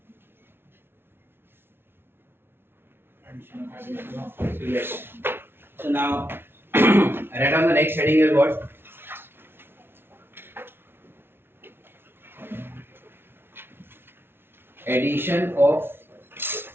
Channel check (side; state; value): left; late; 0.11 ms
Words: So yes. So now, write down the next heading is what? Addition of